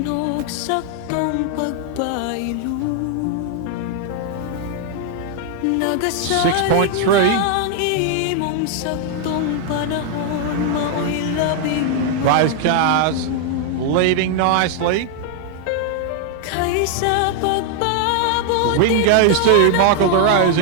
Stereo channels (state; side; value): different; both; correlation 0.00